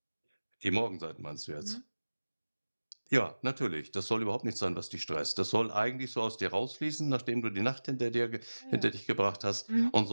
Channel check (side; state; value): both; inverted; correlation -1.00